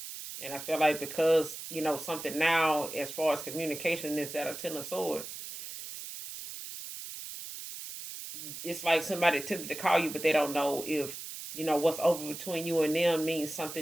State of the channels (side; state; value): right; noise; hiss, 10 dB below the sound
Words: And I feel like because, something now as far as communication is at a ten of swords, it's like somebody tempted to call you, but they don't know if, what's over between you and them means